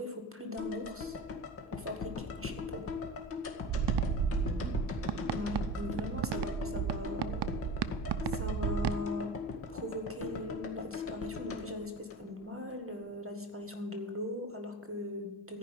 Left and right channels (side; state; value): both; normal; correlation 0.32